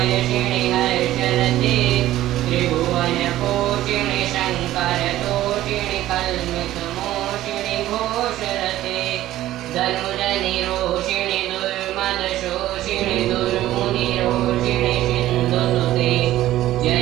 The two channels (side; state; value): left; quieter; 14.5 dB